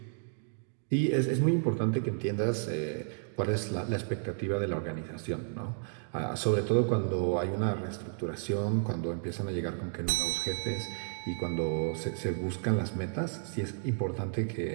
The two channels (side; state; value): left; silent; digital silence